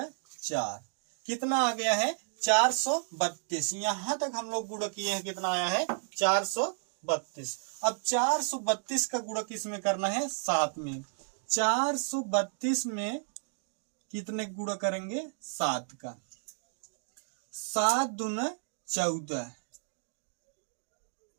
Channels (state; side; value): silent; left; digital silence